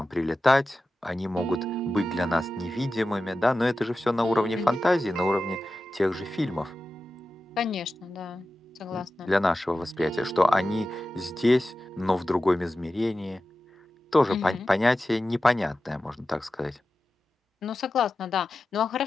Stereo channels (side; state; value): both; normal; correlation 0.93